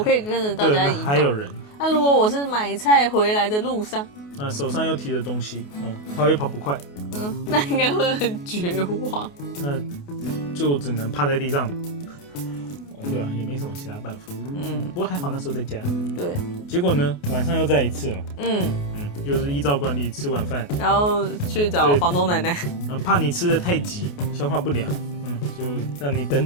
可以跟着大家移动。还有人。那如果我是买菜回来的路上，手上又提着东西，跑也跑不快，那应该会很绝望。那就只能趴在地上。对啊，也没什么其他办法。不过还好那时候在家。对。结果呢，晚上又再一次嘛。又是依照惯例吃晚饭，然后去找房东奶奶。怕你吃的太急，消化不良，就让你等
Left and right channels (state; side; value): late; right; 28 ms